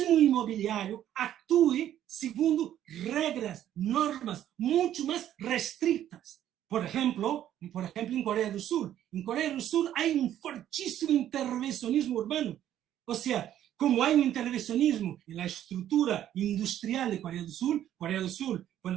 inmobiliario actúe según reglas, normas mucho más restrictas. Por ejemplo, en Corea del Sur. En Corea del Sur hay un fortísimo intervencionismo urbano. O sea, como hay un intervencionismo en la estructura industrial de Corea del Sur,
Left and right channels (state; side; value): quieter; left; 11.5 dB